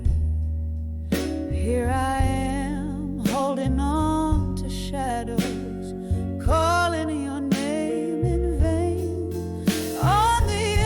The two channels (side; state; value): both; identical; correlation 1.00